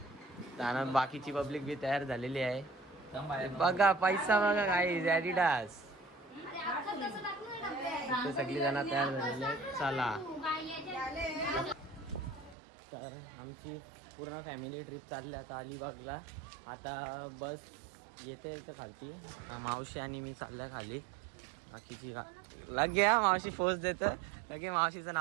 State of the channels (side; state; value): left; drops out; at 12.6 s